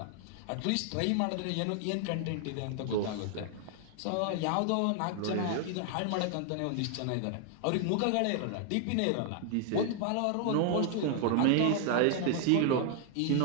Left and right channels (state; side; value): different; both; correlation 0.00